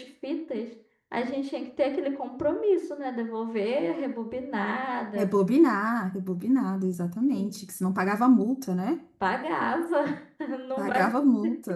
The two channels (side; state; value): both; identical; correlation 1.00